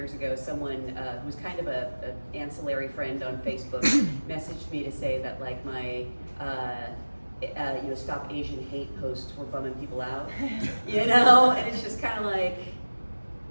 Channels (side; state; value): both; inverted; correlation -1.00